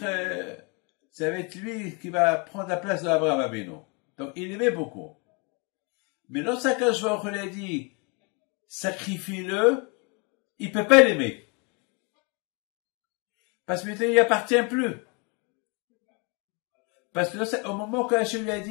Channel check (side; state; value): right; quieter; 32.1 dB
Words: lui qui va prendre la place d'Abraham Abenu. Donc il aimait beaucoup. Mais lorsqu'Akadosh Baruch Hu lui a dit, sacrifie-le, il peut pas l'aimer. Parce que maintenant il appartient plus. Parce que au moment que Hachem lui a